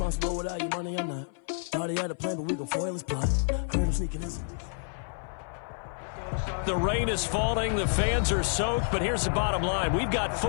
without your money or not? Thought he had a plan, but we gon' foil his plot. Heard him sneaking in. The rain is falling, the fans are soaked, but here's the bottom line. We've got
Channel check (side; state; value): right; silent; 56 dB below the other